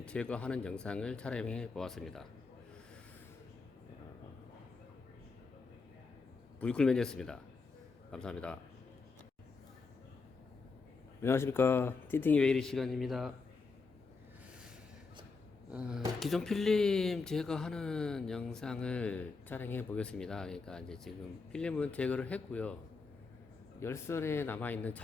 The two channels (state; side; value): quieter; right; 4.4 dB